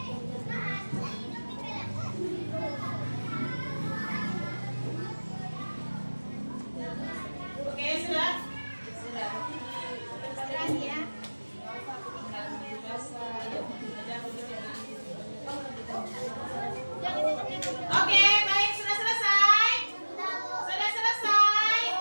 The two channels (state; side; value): inverted; both; correlation -1.00